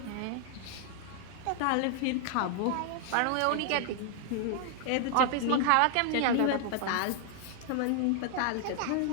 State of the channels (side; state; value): both; different; correlation 0.00